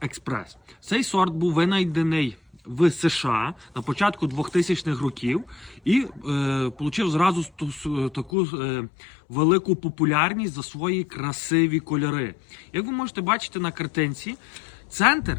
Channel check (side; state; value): right; drops out; at 8.3 s